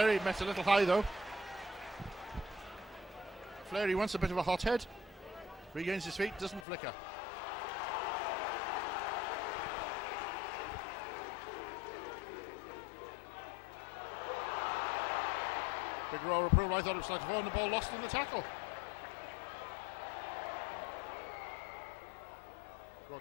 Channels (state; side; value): drops out; right; at 6.7 s